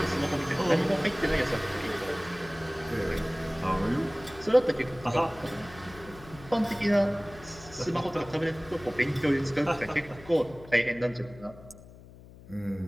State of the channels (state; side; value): noise; left; hum, 19 dB below the sound